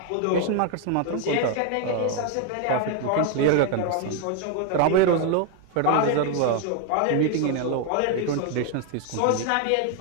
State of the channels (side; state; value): both; different; correlation 0.01